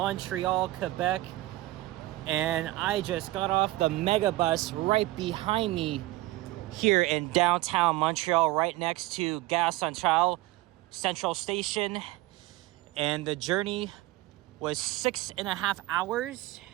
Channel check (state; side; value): quieter; left; 18.1 dB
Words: Quebec. And I just got off the mega bus right behind me here in downtown Montreal, right next to Gare Central Station. And the journey was 6.5 hours.